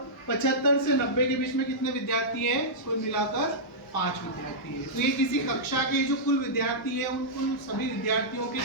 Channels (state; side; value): normal; both; correlation -0.12